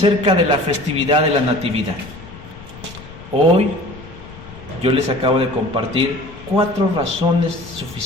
de la festividad de la Natividad. Hoy yo les acabo de compartir 4 razones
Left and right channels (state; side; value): noise; left; rumble, 17 dB below the sound